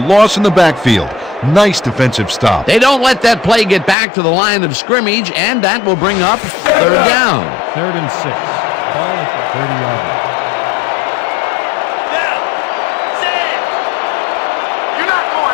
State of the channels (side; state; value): right; drops out; at 4.0 s